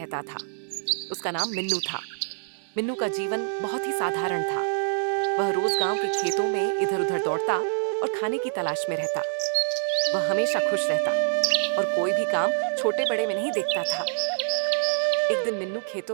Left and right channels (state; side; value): silent; left; digital silence